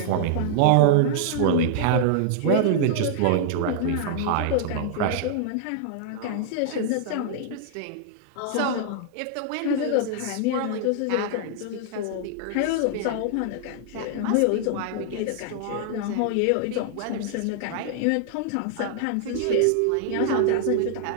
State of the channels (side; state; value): both; different; correlation -0.01